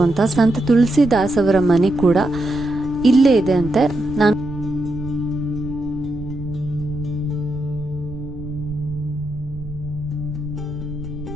ಅಂತ ಸಂತ ತುಳಸಿದಾಸ್ ಅವರ ಮನೆ ಕೂಡ ಇಲ್ಲೇ ಇದೆ ಅಂತೆ. ನಾನು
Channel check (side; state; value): right; noise; rumble, 13 dB below the sound